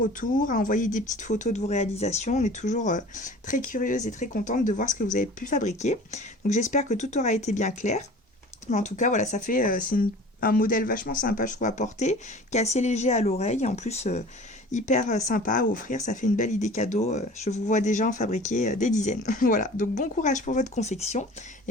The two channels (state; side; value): normal; both; correlation 0.43